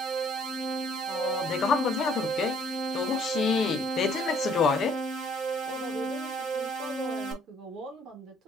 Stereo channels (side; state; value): both; normal; correlation 0.62